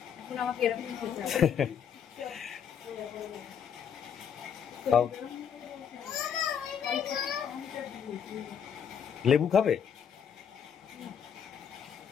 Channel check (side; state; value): right; quieter; 8.0 dB